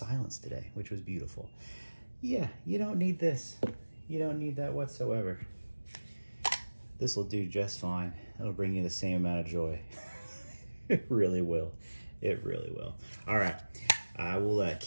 today, which was beautiful. Yeah, you don't need this. You don't need that whatsoever. This will do just fine. It'll bring you the same amount of joy. It really will. It really will. All right. I will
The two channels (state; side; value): inverted; both; correlation -1.00